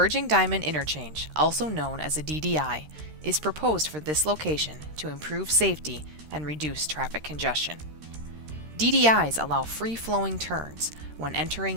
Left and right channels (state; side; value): late; left; 13 ms